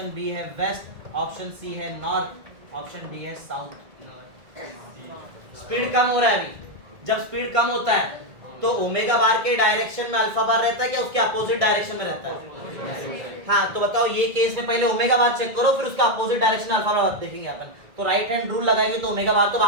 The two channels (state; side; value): late; left; 1.8 ms